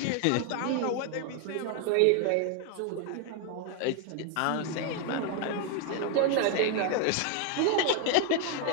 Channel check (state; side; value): different; both; correlation 0.00